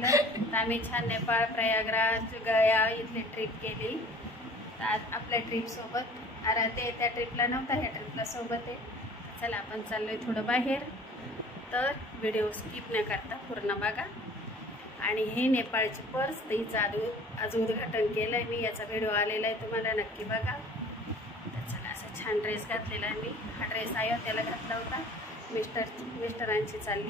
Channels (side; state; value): both; normal; correlation 0.48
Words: तर आम्ही छान नेपाळ, प्रयागराज, गया इथली ट्रिप केली. तर आज आपल्या ट्रिपसोबत आराध्य त्या ट्रिपला नव्हता, ह्या ट्रिपला सोबत आहे. चला आपण चाललो आहे थोडं बाहेर, तर व्हिडिओ स्किप न करता पूर्ण बघा. आणि हे नेपाळची पर्स, तिचं आज उद्घाटन केलं आहे मी, याचा व्हिडिओ आलेला आहे, तुम्हाला नक्की बघा. तर चला, असा छान ड्रेस घातलेला आहे मी. हा ड्रेस अयोध्येला घातला होता. मिस्टरांची